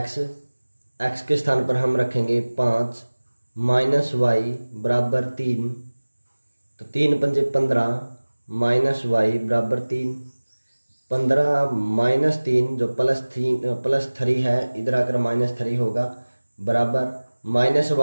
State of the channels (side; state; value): both; inverted; correlation -1.00